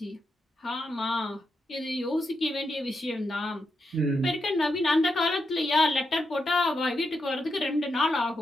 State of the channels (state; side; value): normal; both; correlation 0.84